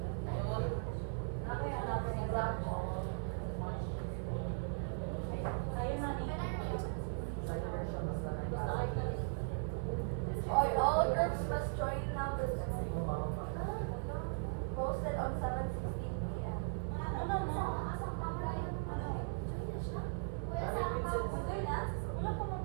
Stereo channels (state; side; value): silent; left; 52 dB below the other